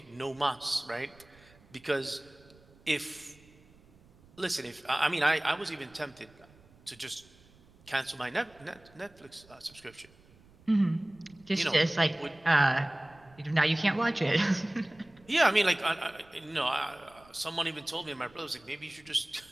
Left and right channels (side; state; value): right; noise; rumble, 27 dB below the sound